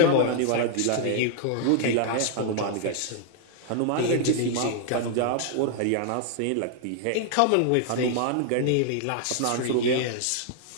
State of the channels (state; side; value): different; both; correlation -0.01